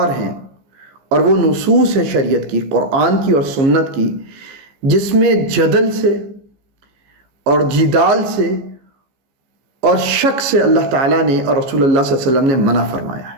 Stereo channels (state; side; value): late; left; 15 ms